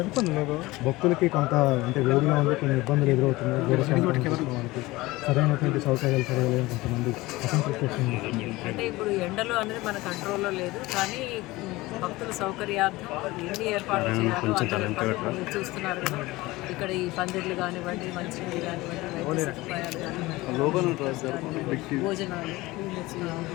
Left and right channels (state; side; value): quieter; right; 20.1 dB